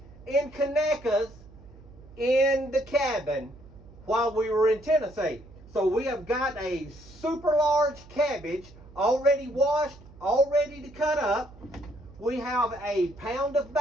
and Conecuhs in the cabin while we were in Tennessee. So we have got a super large cabbage already washed, all ready to cut up. We have a pound of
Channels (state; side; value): noise; right; hum, 21 dB below the sound